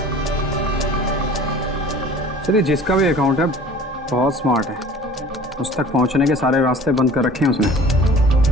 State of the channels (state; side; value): normal; both; correlation 0.45